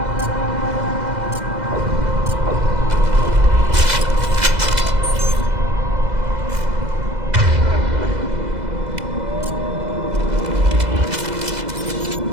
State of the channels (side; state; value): left; late; 2.0 ms